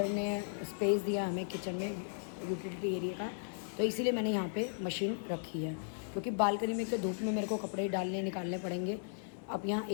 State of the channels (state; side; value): silent; right; 54 dB below the other